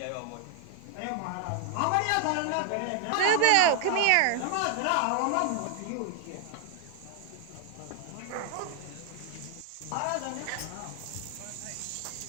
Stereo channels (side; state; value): both; different; correlation 0.00